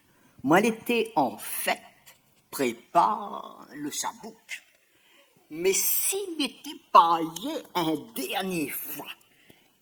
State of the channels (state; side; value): identical; both; correlation 1.00